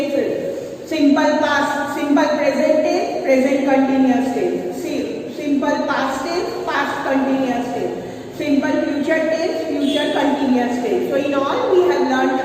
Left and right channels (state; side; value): identical; both; correlation 1.00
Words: Simple past, simple present tense, present continuous tense. Simple past tense, past continuous tense. Simple future tense, future continuous tense. So in all we have learned